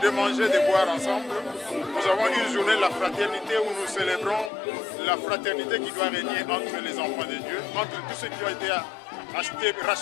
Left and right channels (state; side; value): drops out; right; at 4.5 s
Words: manger, de boire ensemble. Nous avons une journée de la fraternité où nous célébrons la fraternité qui doit régner entre les enfants de Dieu, entre tous ceux qui ont été